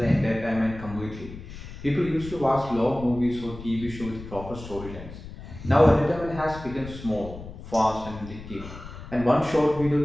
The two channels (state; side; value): noise; left; rumble, 13 dB below the sound